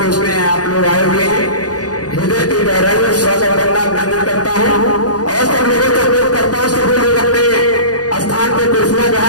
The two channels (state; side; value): late; right; 0.68 ms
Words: उसमें आप लोग आए हुए हैं, हृदय की गहराई में स्वागत करना अभिनंदन करता हूँ और सब लोगों को उपयोग करता हूँ। सभी लोग अपने स्थान पर कुर्सियां